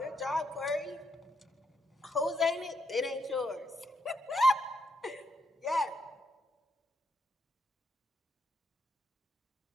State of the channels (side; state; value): both; normal; correlation 0.79